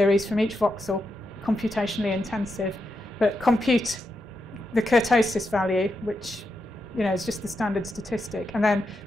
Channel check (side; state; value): both; normal; correlation 0.85